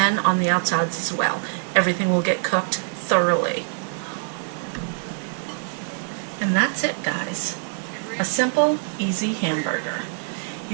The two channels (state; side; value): silent; left; 58 dB below the other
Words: on the outsides as well. Everything will get cooked thoroughly. And that's it, guys. A simple, easy hamburger.